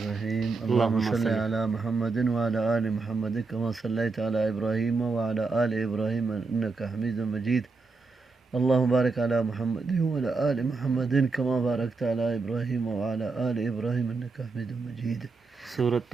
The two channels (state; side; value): quieter; left; 4.0 dB